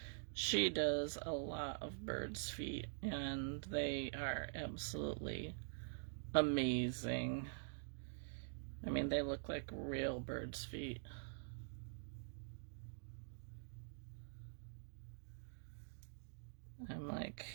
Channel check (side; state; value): left; silent; digital silence